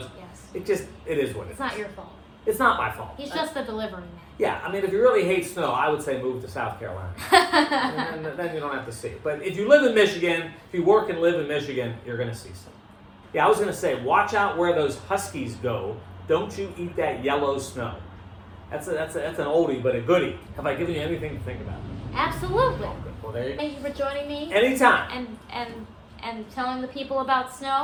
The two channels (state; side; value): identical; both; correlation 1.00